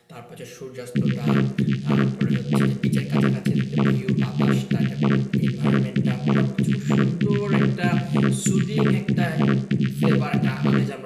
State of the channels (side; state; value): both; identical; correlation 1.00